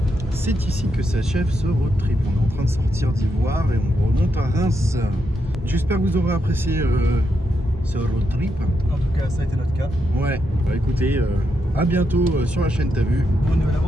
c'est ici que s'achève ce road trip. On est en train de sortir d'Ivoire et on remonte à Reims. J'espère que vous aurez apprécié ce road trip. En tout cas, ça a été notre cas. Ouais, bah écoutez, à bientôt sur la chaîne T'as vu. Bonne nouvelle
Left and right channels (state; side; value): normal; both; correlation 0.82